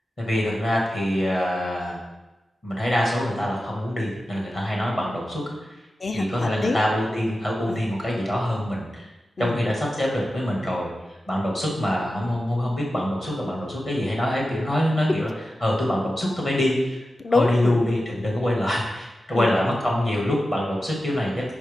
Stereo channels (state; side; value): normal; both; correlation 0.93